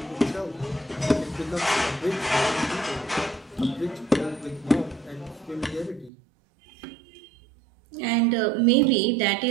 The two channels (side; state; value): left; drops out; at 6.1 s